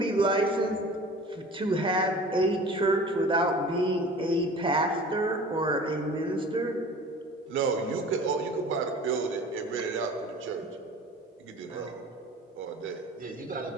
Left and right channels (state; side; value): normal; both; correlation 0.42